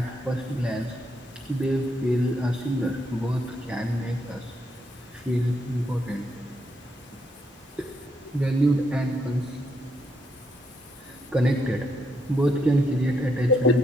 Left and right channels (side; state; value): both; normal; correlation 0.77